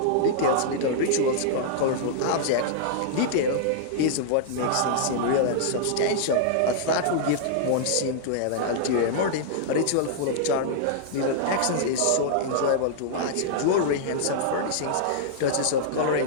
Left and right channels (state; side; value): different; both; correlation -0.02